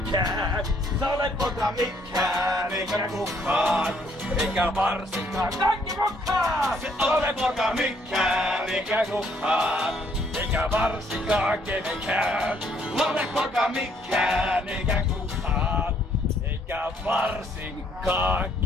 Se ole poka mikään, eikä kukaan, eikä varsinkaan kaikki mukaan. Se ole poka mikään, eikä kukaan, eikä varsinkaan kenenkään. Ole poka mikään, eikä kukaan, eikä varsinkaan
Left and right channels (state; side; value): normal; both; correlation 0.67